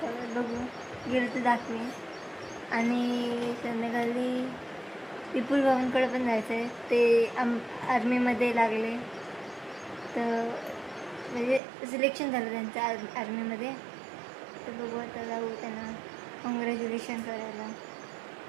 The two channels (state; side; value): drops out; left; at 11.6 s